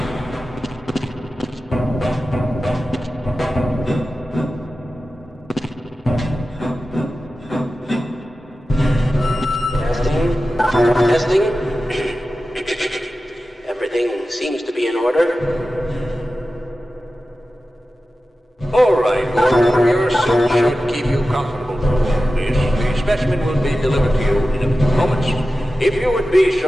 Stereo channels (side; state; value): both; normal; correlation 0.94